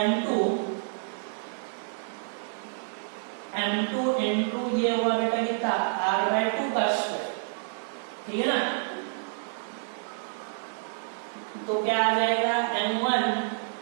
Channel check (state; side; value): silent; left; digital silence